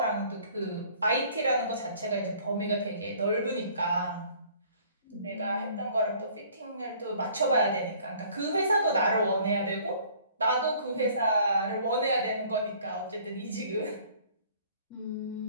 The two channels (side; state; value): both; inverted; correlation -0.55